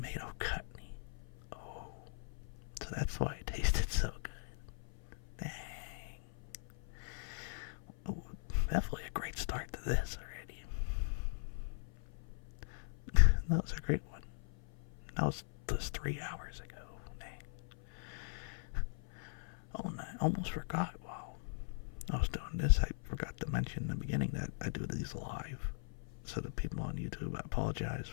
chutney. Oh, so that's why it tasted so good. Dang. Oh, definitely a great start to this already. That was a great one. That was just 3 hours ago. Dang. Oh, and I almost forgot while I was doing this, I forgot to mention in the beginning that I do these live. So the people on YouTube, I apologize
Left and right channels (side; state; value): right; silent; 51 dB below the other